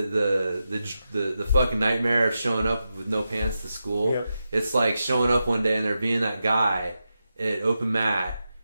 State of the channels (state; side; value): inverted; both; correlation -0.89